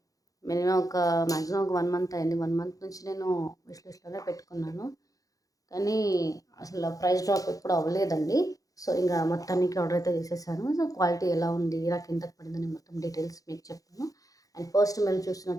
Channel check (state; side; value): late; right; 0.17 ms